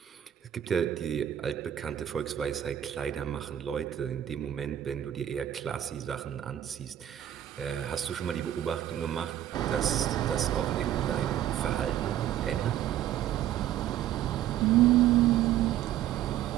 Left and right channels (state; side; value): quieter; left; 11.6 dB